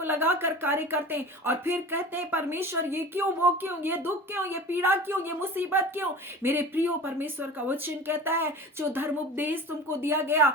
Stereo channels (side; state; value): both; normal; correlation 0.37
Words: लगाकर कार्य करते हैं और फिर कहते हैं परमेश्वर ये क्यों, वो क्यों, ये दुख क्यों, ये पीड़ा क्यों, ये मुसीबत क्यों। मेरे प्रियो, परमेश्वर का वचन कहता है जो धर्म उपदेश तुमको दिया गया,